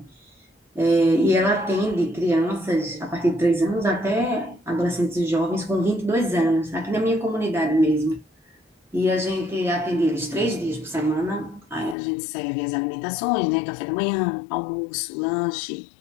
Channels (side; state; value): right; drops out; at 12.0 s